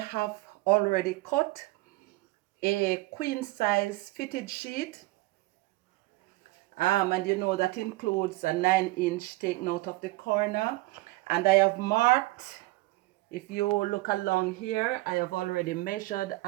already cut a queen size fitted sheet. And you know that includes a 9-inch taken out of the corner. And I have marked, if you look along here, I have already measured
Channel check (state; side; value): quieter; left; 20.3 dB